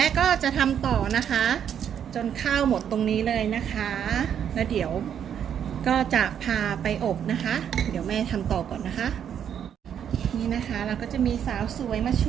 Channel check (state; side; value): quieter; left; 8.8 dB